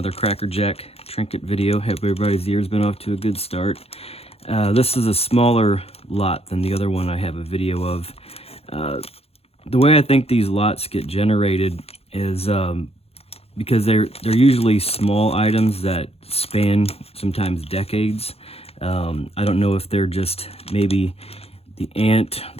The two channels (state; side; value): late; right; 0.29 ms